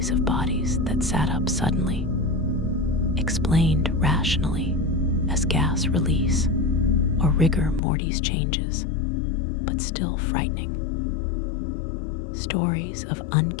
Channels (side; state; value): right; drops out; at 7.8 s